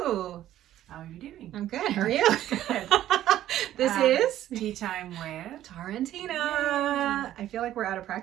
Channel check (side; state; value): left; quieter; 12.7 dB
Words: How are you doing? I'm good. How are you? Good. This is Tea Time with Tara and Tina. Yay. I feel like we're out of